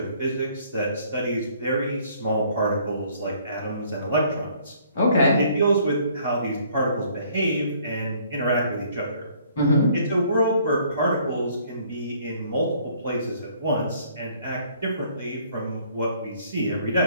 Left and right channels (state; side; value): inverted; both; correlation -0.60